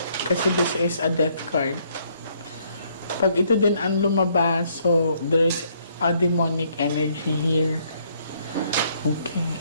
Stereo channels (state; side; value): inverted; both; correlation -0.68